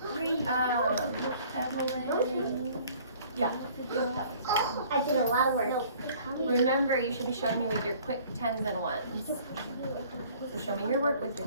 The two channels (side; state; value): both; inverted; correlation -0.54